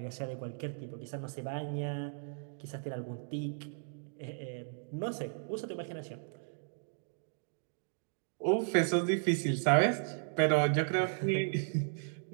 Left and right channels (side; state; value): left; silent; digital silence